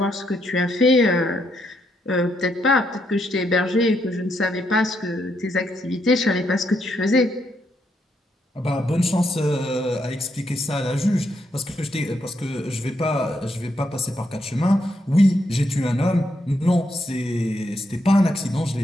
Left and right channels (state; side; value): normal; both; correlation 0.78